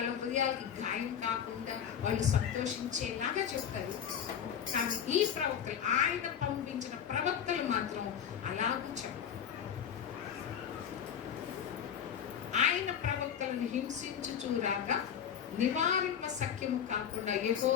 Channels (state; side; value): quieter; right; 8.6 dB